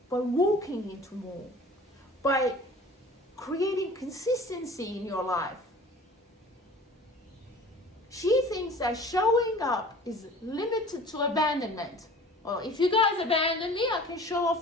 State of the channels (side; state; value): both; normal; correlation 0.45